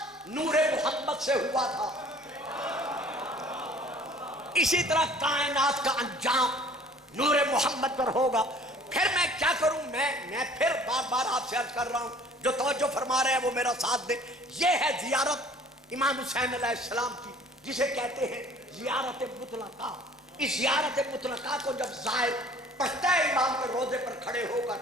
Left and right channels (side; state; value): both; normal; correlation 0.51